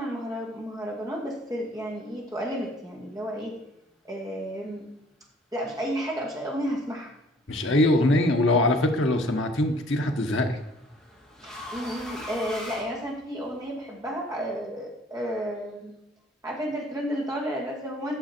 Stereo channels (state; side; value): normal; both; correlation 0.56